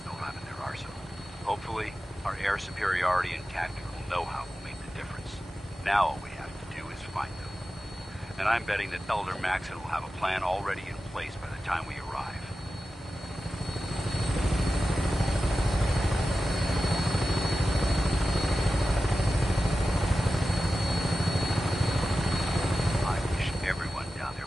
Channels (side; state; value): both; normal; correlation 0.93